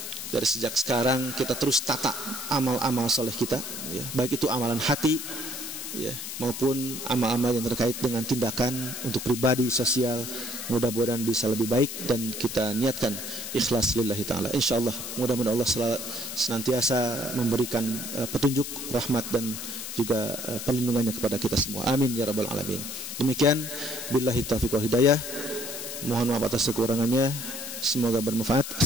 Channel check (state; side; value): noise; left; hiss, 7 dB below the sound